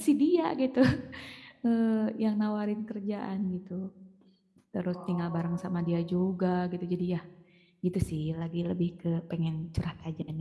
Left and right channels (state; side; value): identical; both; correlation 1.00